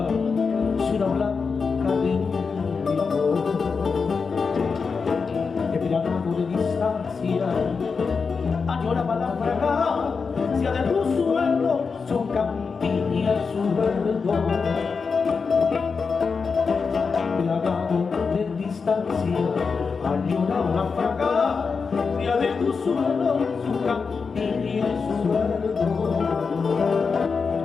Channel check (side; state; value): right; quieter; 5.1 dB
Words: ciudad blanca de mi amor, esperando de distancia, añoraba la fragancia de tu suelo, su campiña, su verdor. Plagado de distancia, añoraba la fragancia de tu suelo, su campiña, su verdor.